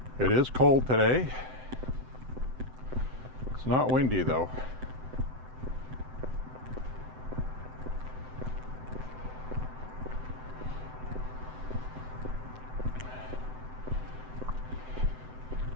It is cold today. It's not windy though.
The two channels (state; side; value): late; left; 7.8 ms